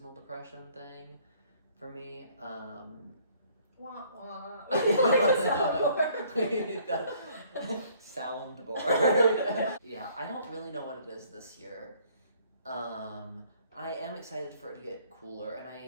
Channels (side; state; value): both; inverted; correlation -0.60